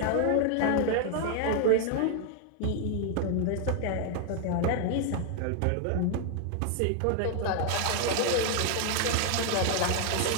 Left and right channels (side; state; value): both; different; correlation 0.00